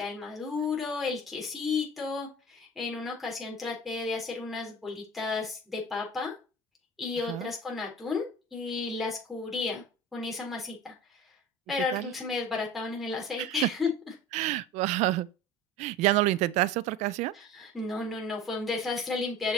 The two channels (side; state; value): both; normal; correlation 0.37